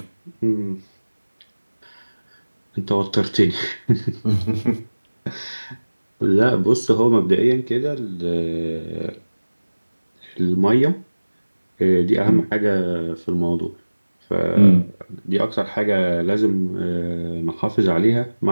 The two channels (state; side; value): inverted; both; correlation -1.00